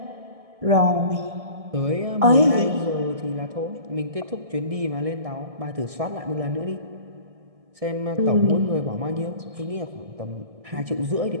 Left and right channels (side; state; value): left; late; 1.6 ms